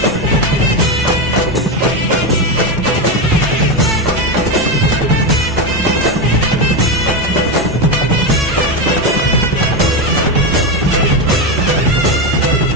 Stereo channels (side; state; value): both; normal; correlation 0.12